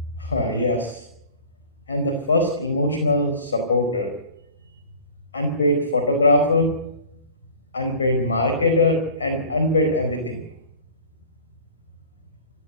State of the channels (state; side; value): inverted; both; correlation -0.43